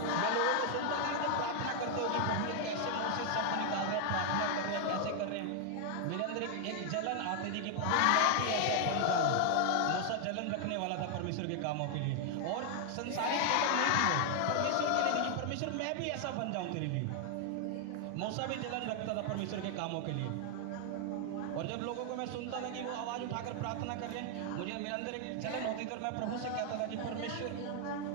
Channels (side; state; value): both; different; correlation 0.00